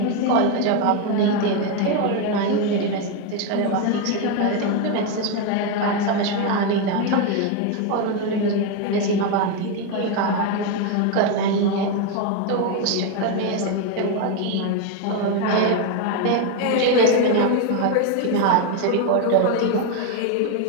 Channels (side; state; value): both; different; correlation 0.02